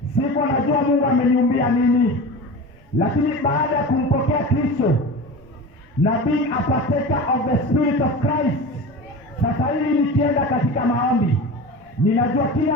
sikuwa najua Mungu ameniumbia nini, lakini baada ya kumpokea Kristo na being a partaker of the Spirit of Christ, sasa hivi nikienda katika maombi ninajua kile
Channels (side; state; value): both; normal; correlation 0.31